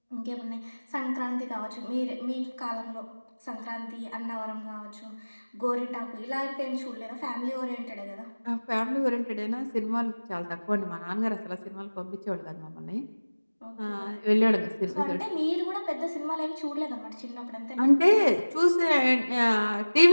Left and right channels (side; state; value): both; inverted; correlation -1.00